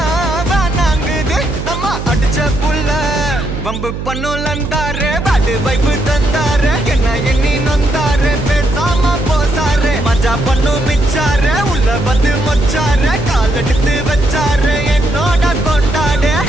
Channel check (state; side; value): noise; right; hum, 6 dB below the sound